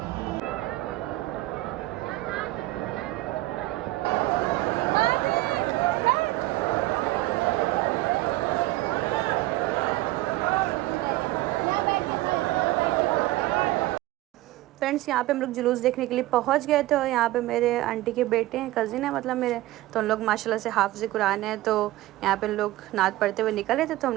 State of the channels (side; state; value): left; quieter; 17.3 dB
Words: फ्रेंड्स यहाँ पे हम लोग जुलूस देखने के लिए पहुँच गए थे और यहाँ पे मेरे आंटी के बेटे हैं, कज़िन है मतलब मेरे, तो उन लोग माशाल्लाह से हाफ़िज़ कुरान है, तो यहाँ पे लोग नात पढ़ते हुए निकले थे। तो